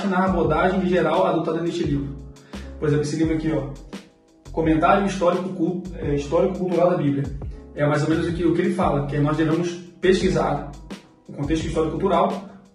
na abordagem geral adotada neste livro? Por exemplo, esse livro aqui, ó, Comentário Histórico-Cultural da Bíblia. É mais ou menos o que ele fala, que nós devemos pesquisar o contexto histórico-cultural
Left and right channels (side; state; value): both; identical; correlation 1.00